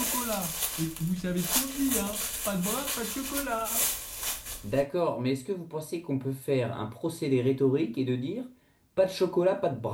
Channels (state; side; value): identical; both; correlation 1.00